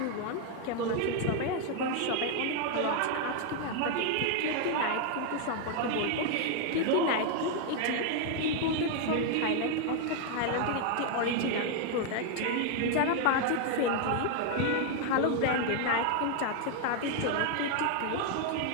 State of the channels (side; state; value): both; different; correlation 0.00